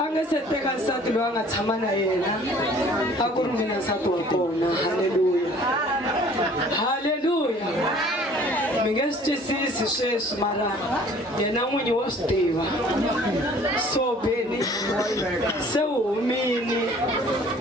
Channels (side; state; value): both; normal; correlation 0.52